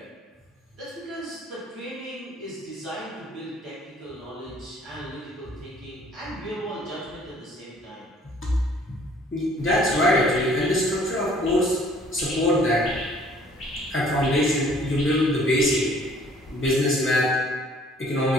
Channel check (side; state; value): both; normal; correlation 0.57